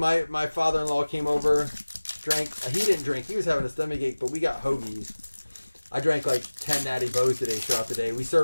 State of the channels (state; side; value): inverted; both; correlation -1.00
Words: father-in-law came over, drank. He didn't drink. He was having a stomachache, but we got hoagies. I drank like 10 Natty Bows today throughout the day. We